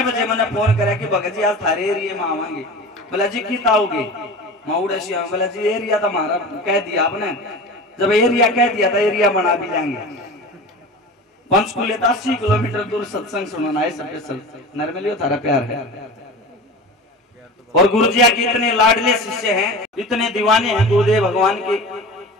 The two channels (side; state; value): both; normal; correlation 0.33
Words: बजे मैंने फोन करा कि भगत जी आज थारे एरिया में आवांगे। बोला जी कितना आओगे? माउड़ा श्याम। बोला जी एरिया तो हमारा कह दिया आपने, जब एरिया कह दिया था एरिया बना भी जाएंगे। पंचकुले 80 किलोमीटर दूर सत्संग सुनाना है स्पेशल। नरमलियो थारा प्यार है। और गुरुजिया के इतने लाडले शिष्य हैं, इतने दीवाने हैं गुरुदेव भगवान के।